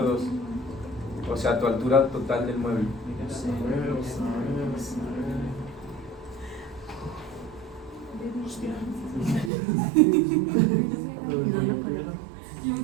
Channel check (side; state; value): left; drops out; at 9.5 s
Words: O sea, tu altura total del mueble.